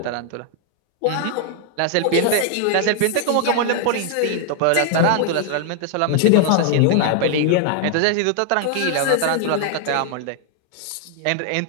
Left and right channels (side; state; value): both; different; correlation 0.00